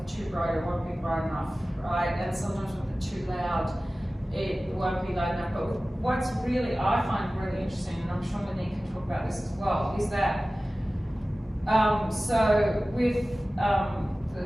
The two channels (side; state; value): both; normal; correlation 0.97